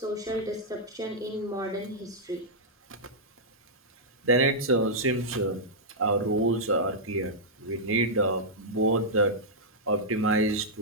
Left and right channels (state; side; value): normal; both; correlation -0.09